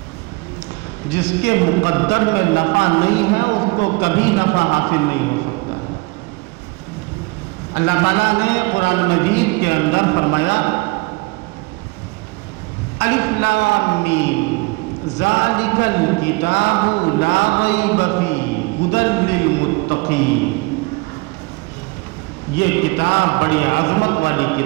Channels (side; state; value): left; quieter; 25.9 dB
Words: جس کے مقدر میں نفع نہیں ہے اس کو کبھی نفع حاصل نہیں ہو سکتا. اللہ تعالیٰ نے قرآن مجید کے اندر فرمایا، الف لام میم ذالک الکتاب لا ریب فیہ ھدی للمتقین. یہ کتاب بڑی عظمت والی